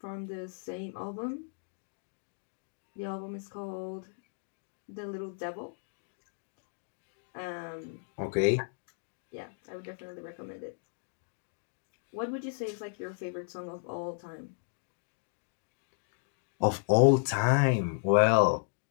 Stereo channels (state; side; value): silent; right; digital silence